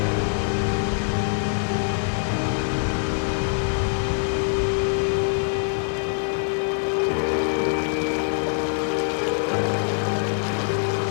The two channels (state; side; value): silent; right; digital silence